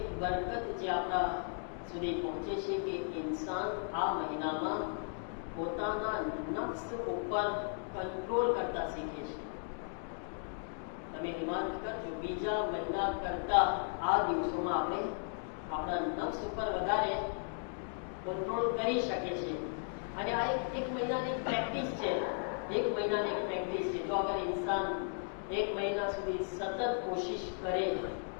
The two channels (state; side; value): silent; right; 54 dB below the other